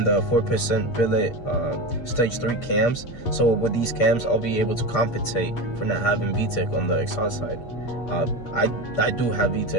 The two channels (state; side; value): late; right; 8.3 ms